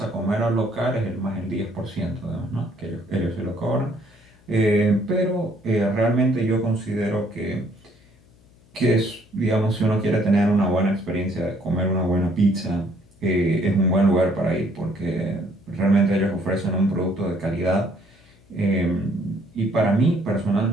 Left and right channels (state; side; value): noise; left; hum, 29 dB below the sound